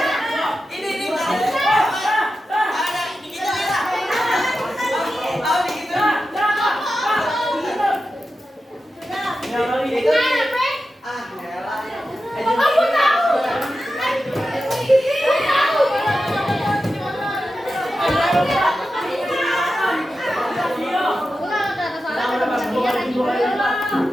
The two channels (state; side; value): normal; both; correlation 0.91